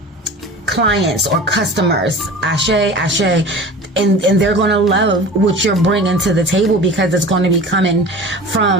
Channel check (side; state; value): both; normal; correlation 0.38